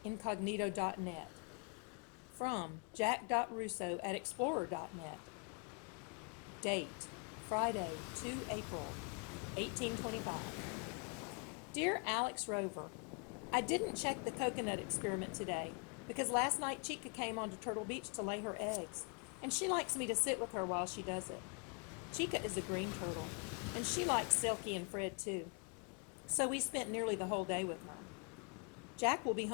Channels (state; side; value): quieter; right; 33.6 dB